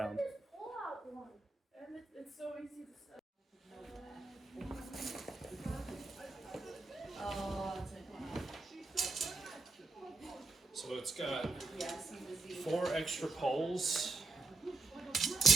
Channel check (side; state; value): left; quieter; 3.6 dB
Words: This pull-out one. and it's so easy to set. Oh, it's So it's got yeah, see the Z. 4 extra poles. Okay.